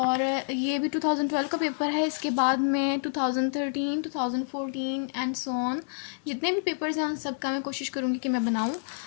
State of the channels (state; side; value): silent; right; 59 dB below the other